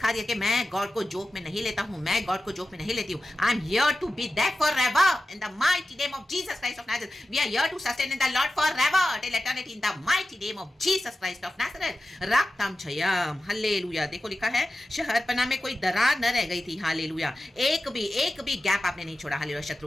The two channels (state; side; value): normal; both; correlation 0.93